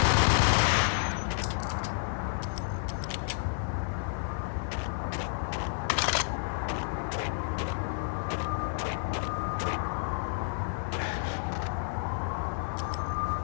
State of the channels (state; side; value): silent; right; 57 dB below the other